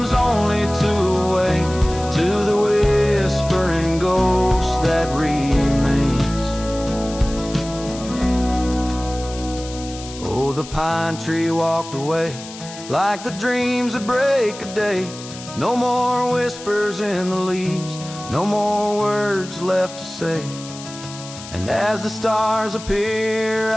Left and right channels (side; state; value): left; noise; hiss, 14 dB below the sound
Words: only to awake to the whispering ghost that remains. Oh, the pine tree walked away like the dreams that break a day. No more whispers in the leaves, no more words left to say. And as the stars appear,